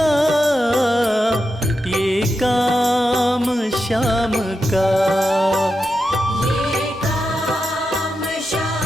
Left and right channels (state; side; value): normal; both; correlation 0.88